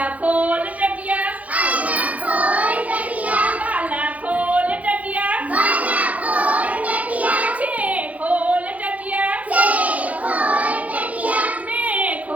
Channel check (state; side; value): late; left; 0.070 ms